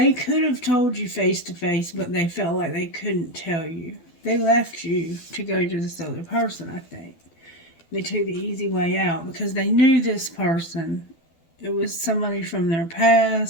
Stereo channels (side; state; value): right; late; 12 ms